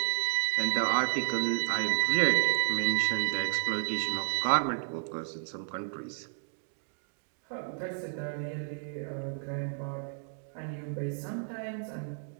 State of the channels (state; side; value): silent; left; 57 dB below the other